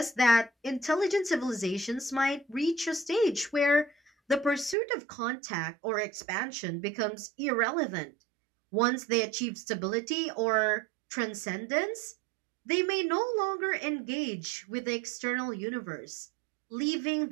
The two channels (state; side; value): drops out; left; at 4.8 s